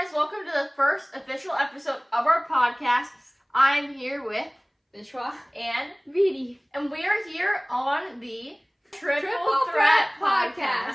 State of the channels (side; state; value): both; identical; correlation 1.00